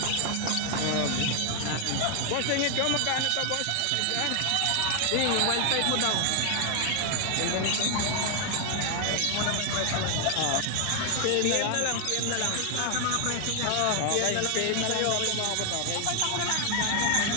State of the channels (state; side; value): different; both; correlation 0.00